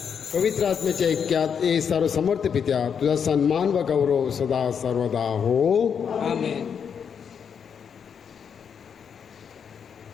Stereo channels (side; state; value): right; quieter; 7.2 dB